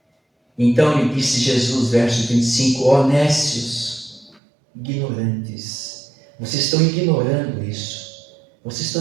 Então lhe disse Jesus, verso 25, ó nécios, ignorantes, vocês estão ignorando isso. Vocês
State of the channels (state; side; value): drops out; left; at 4.4 s